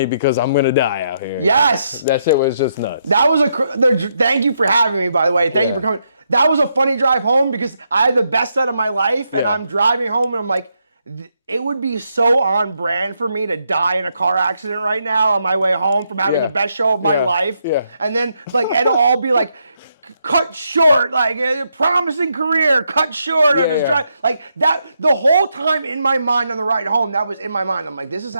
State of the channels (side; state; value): both; inverted; correlation -0.79